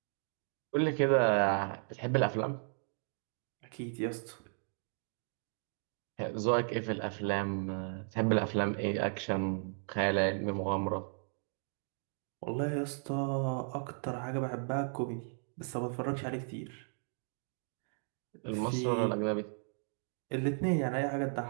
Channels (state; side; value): silent; left; 54 dB below the other